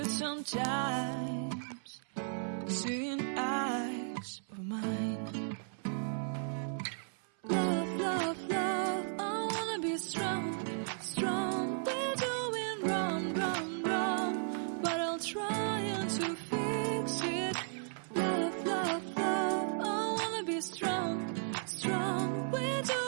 sometimes. Seeing eyes of mine. Love, love, love, I wanna be strong, strong. We're doing wrong, wrong, wrong, but I'll try to fix it. Love, love, love, I wanna be strong, strong. We're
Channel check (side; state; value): left; silent; 54 dB below the other